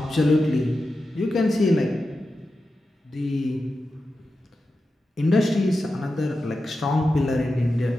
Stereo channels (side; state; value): both; normal; correlation 0.91